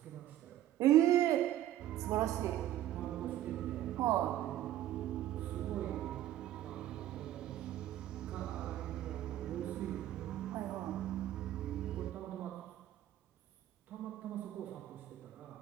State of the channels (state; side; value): quieter; left; 13.1 dB